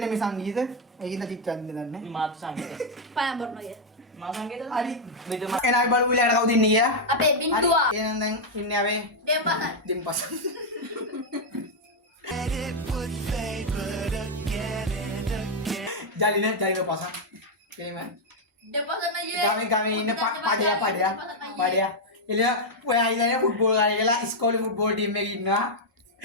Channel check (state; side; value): normal; both; correlation -0.01